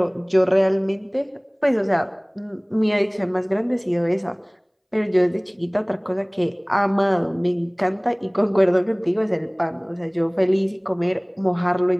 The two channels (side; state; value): both; identical; correlation 1.00